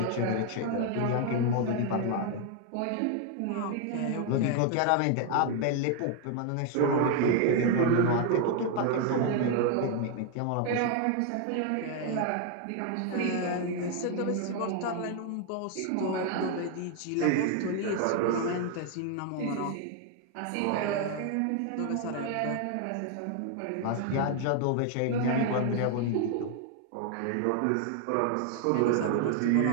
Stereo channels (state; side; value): different; both; correlation 0.01